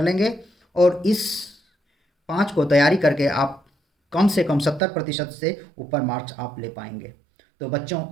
लेंगे। और इस 5 को तैयारी करके आप कम से कम 70% से ऊपर मार्क्स आप ले पाएंगे। तो बच्चों,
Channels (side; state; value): left; drops out; at 4.8 s